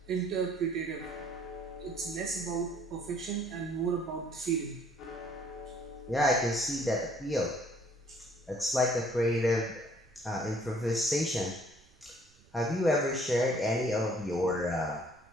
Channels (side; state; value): right; noise; rumble, 29 dB below the sound